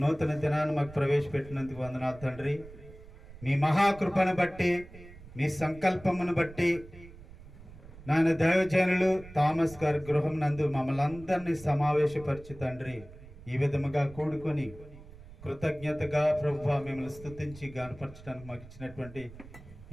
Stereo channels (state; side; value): noise; right; rumble, 18 dB below the sound